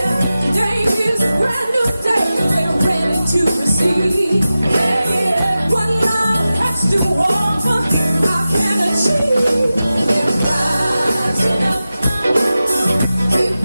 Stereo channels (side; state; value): both; inverted; correlation -0.94